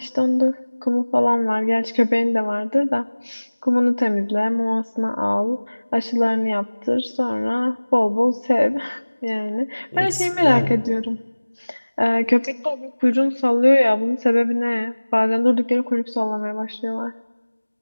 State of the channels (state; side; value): inverted; both; correlation -1.00